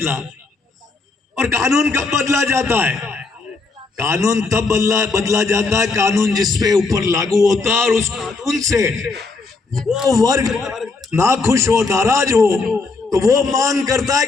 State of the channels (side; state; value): right; quieter; 4.0 dB